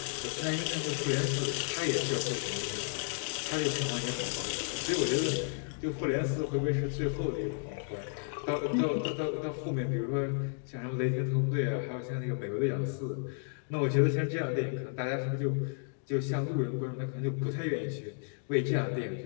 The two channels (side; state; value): right; silent; 56 dB below the other